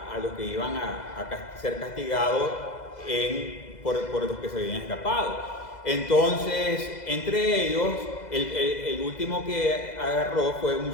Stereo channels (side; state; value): right; late; 2.0 ms